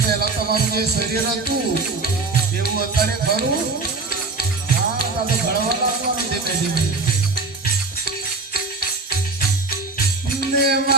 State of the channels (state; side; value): quieter; left; 3.7 dB